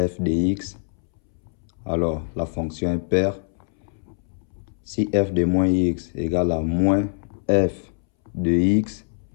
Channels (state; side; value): silent; right; 63 dB below the other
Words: f de x, alors la fonction est paire. Si f de moins x égale à moins f de x,